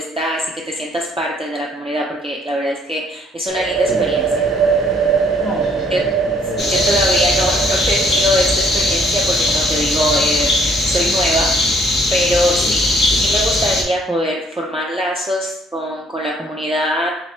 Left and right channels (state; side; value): normal; both; correlation 0.63